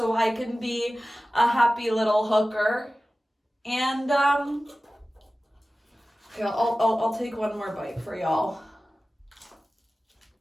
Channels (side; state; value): both; normal; correlation 0.96